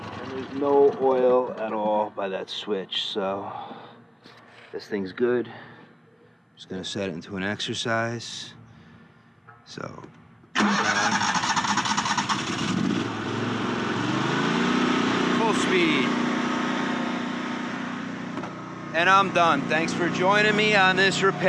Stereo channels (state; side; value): identical; both; correlation 1.00